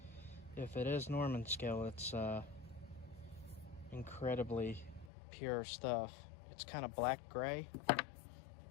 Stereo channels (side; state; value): right; drops out; at 5.1 s